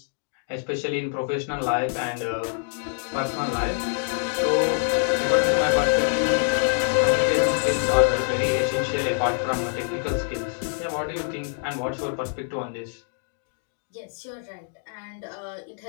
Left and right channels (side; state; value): right; silent; 62 dB below the other